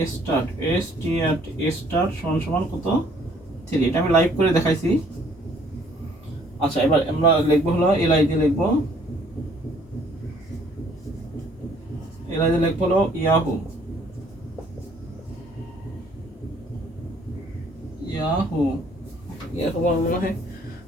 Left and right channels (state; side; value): normal; both; correlation 0.61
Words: স্টার্ট স্টার্ট সমান সমান কত 3। এটা আমি লাইভ করে দেখাইছি। আচ্ছা এবার আমরা লিখবো হলো এলআই দিয়ে লিখবো, এলআই দিয়ে লিখবো হলো ইয়াহু, ইয়াহু এরকম মনে হয়